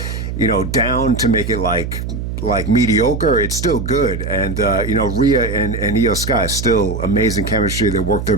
down to make it like mediocre. It's still good. And, Rhea and Io Sky, still amazing chemistry. They work their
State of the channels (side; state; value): right; noise; hum, 5 dB below the sound